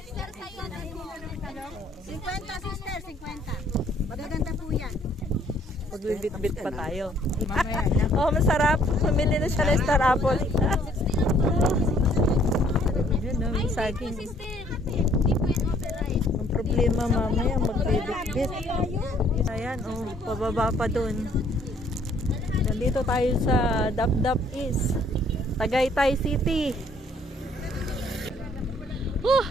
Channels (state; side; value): normal; both; correlation 0.63